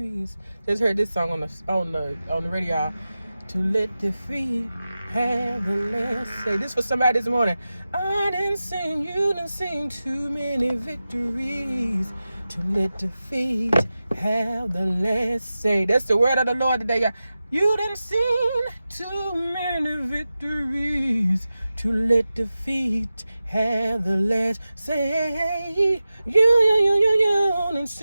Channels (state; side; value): inverted; both; correlation -0.94